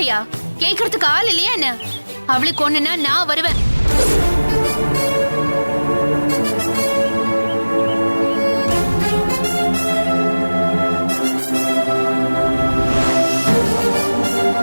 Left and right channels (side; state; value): both; inverted; correlation -1.00